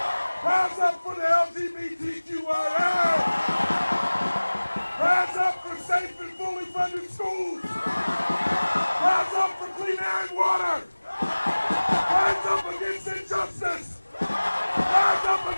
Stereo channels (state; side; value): inverted; both; correlation -1.00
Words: Rise up for the LGBTQIA! Rise up for safe and fully funded schools! Rise up for clean air and water! Rise up against injustice! Rise up